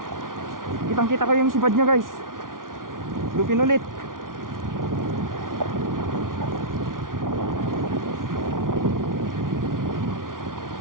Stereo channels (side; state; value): left; late; 0.89 ms